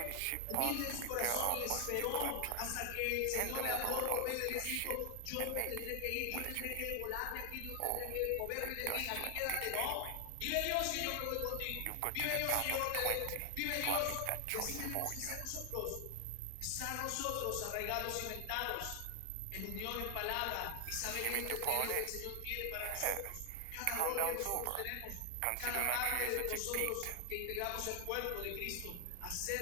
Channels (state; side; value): different; both; correlation 0.00